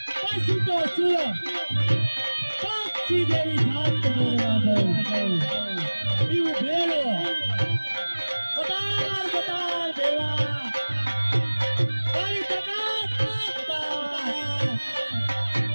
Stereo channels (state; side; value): inverted; both; correlation -1.00